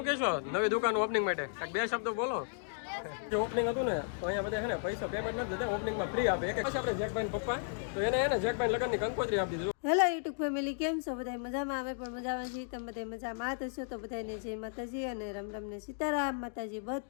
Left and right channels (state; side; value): silent; right; digital silence